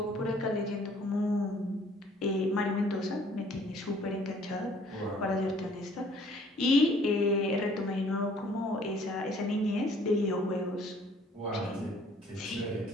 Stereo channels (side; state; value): both; normal; correlation 0.58